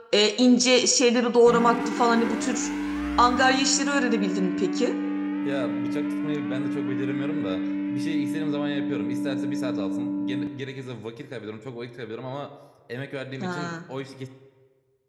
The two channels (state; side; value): identical; both; correlation 1.00